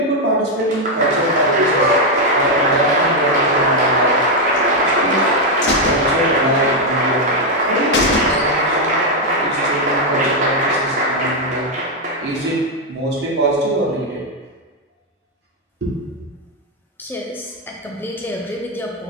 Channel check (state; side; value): normal; both; correlation 0.02